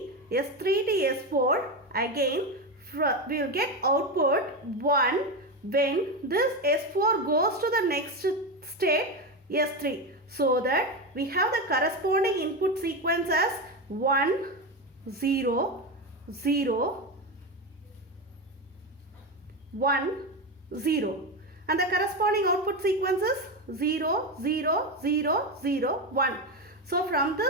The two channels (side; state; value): both; normal; correlation 0.15